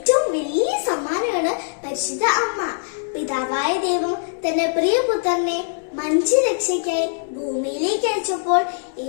വലിയ സമ്മാനമാണ് പരിശുദ്ധ അമ്മ. പിതാവായ ദൈവം തന്റെ പ്രിയപുത്രനെ മനുഷ്യരക്ഷയ്ക്കായി ഭൂമിയിലേക്ക് അയച്ചപ്പോൾ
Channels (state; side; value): silent; right; 61 dB below the other